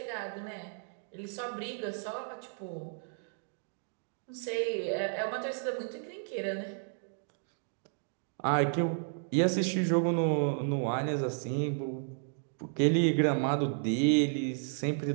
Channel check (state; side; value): silent; left; digital silence